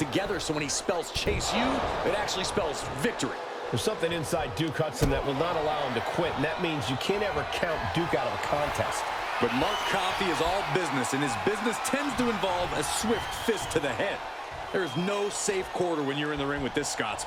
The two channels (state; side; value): identical; both; correlation 1.00